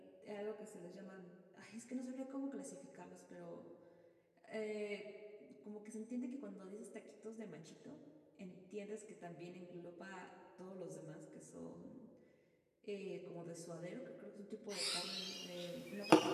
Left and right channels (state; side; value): identical; both; correlation 1.00